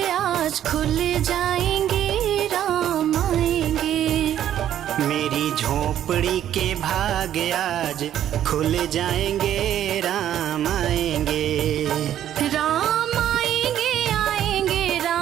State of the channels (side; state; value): left; quieter; 11.0 dB